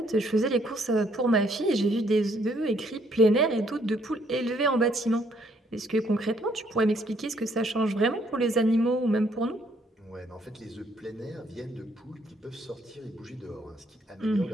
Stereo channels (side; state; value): both; normal; correlation 0.68